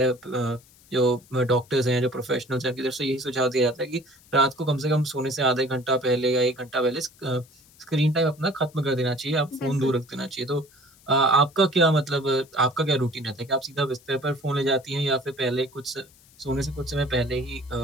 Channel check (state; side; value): noise; left; hiss, 27 dB below the sound